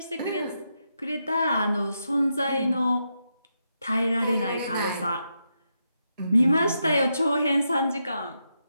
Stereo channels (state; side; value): inverted; both; correlation -0.84